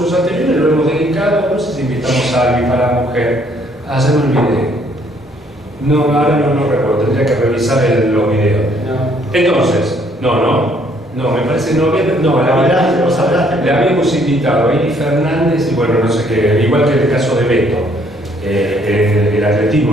anteriores lo hemos dedicado, no sé si invitamos a alguien para la mujer, se me olvidé. No, ahora no recuerdo, tendría que revisar los videos. No. Entonces, no, me parece le habíamos invitado a Eli Fernández y bueno, no sé qué, igual que el caso de Beto. El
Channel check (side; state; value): both; normal; correlation 0.65